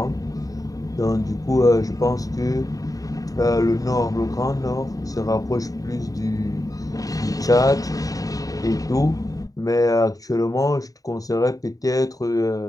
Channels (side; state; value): right; late; 0.17 ms